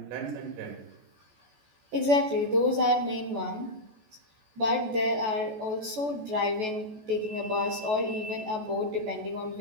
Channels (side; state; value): left; late; 14 ms